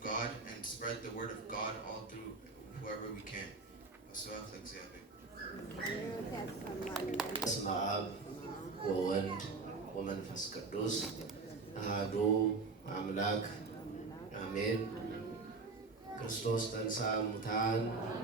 God and spread the word of God all through whoever we can. በስመ አብ ወወልድ ወመንፈስ ቅዱስ አሐዱ አምላክ አሜን። ክርስቶስ ተንሥአ እሙታን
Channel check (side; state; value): left; quieter; 4.1 dB